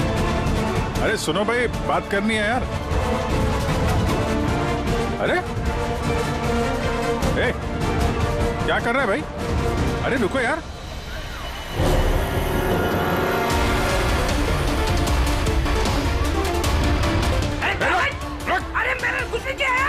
अरे सुनो भाई, बात करनी है यार। अरे ए, क्या कर रहा है भाई? अरे रुको यार। अरे मेरे कुछ नहीं किया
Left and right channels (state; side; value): identical; both; correlation 1.00